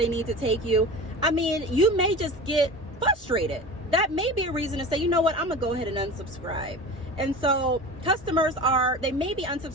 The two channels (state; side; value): normal; both; correlation 0.33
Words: need to take you, you may just get frustrated. That may be a reason to say, you know what, I'm gonna go ahead and unsubscribe. And so customers they may be